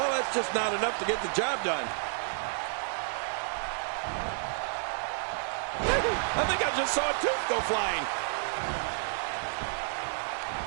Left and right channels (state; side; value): silent; left; 57 dB below the other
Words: that's just not enough to get the job done. I think I just saw a tooth go flying.